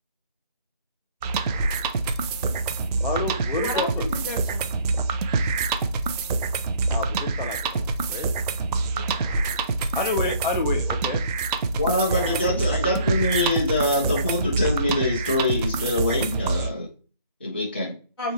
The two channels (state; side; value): inverted; both; correlation -0.57